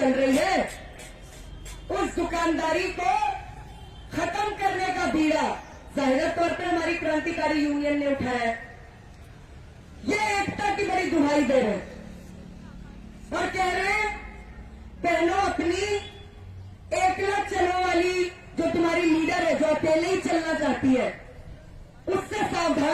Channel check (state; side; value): identical; both; correlation 1.00